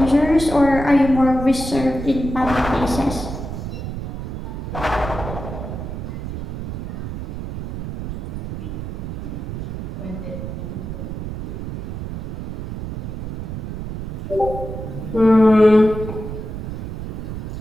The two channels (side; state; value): right; noise; rumble, 6 dB below the sound